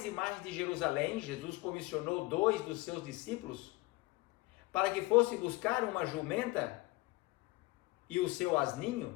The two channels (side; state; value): right; quieter; 21.5 dB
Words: e mais de Jerusalém, Jesus comissionou 2 dos seus discípulos para que fosse buscar uma jumenta e o seu